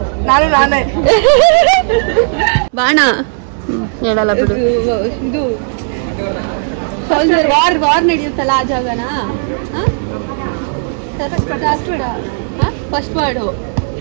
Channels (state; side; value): silent; left; 71 dB below the other